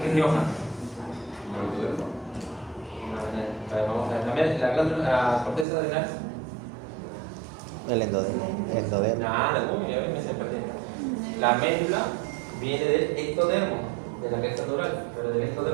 ¿qué es Rioja? Vamos a ver, la corteza adrenal. El endodermo. Nada, me se perdió. La médula viene del ectodermo, de la cresta neural, pero del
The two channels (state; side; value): drops out; left; at 5.7 s